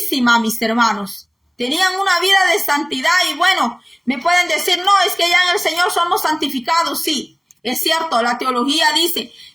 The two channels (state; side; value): identical; both; correlation 1.00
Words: mis hermanos. Tenían una vida de santidad y bueno, me pueden decir, no, es que ya en el Señor somos santificados. Sí, es cierto, la teología dice